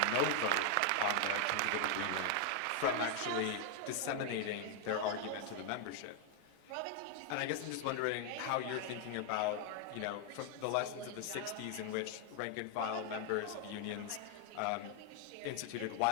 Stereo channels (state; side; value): different; both; correlation 0.00